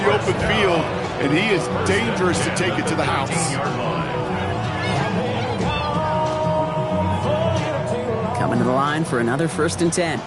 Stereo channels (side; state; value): both; identical; correlation 1.00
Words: the open field, and he is dangerous to take it to the house. Coming to the line for another 1st and 10.